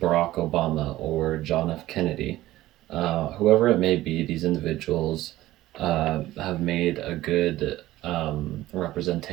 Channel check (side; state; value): left; quieter; 15.9 dB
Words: Obama or John F. Kennedy. Whoever it may be, these individuals have made a good